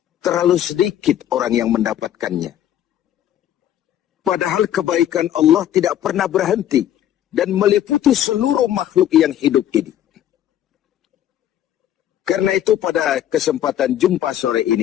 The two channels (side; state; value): right; quieter; 11.4 dB